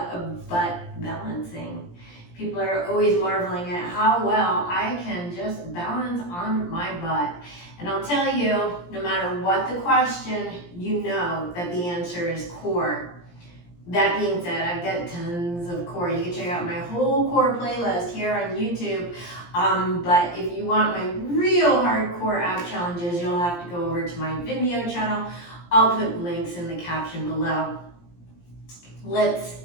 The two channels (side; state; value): right; late; 17 ms